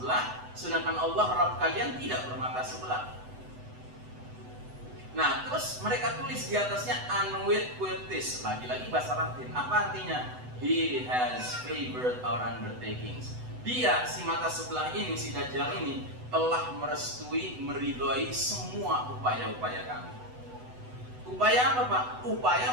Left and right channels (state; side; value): late; left; 8.0 ms